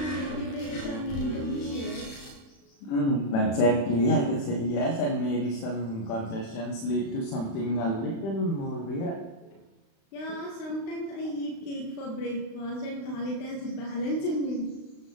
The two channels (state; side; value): late; right; 36 ms